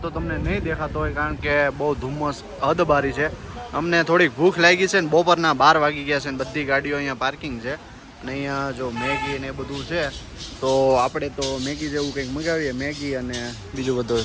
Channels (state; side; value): identical; both; correlation 1.00